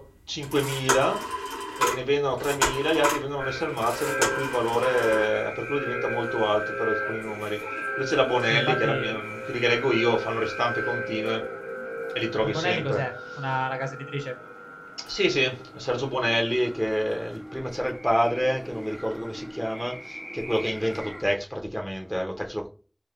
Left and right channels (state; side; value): identical; both; correlation 1.00